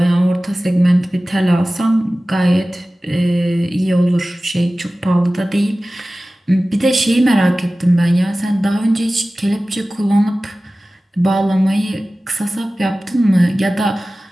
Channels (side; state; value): both; normal; correlation 0.97